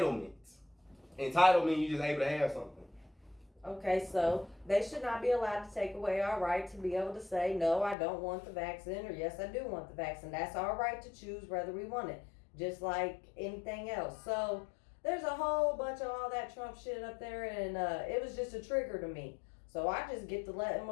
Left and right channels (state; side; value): drops out; right; at 8.0 s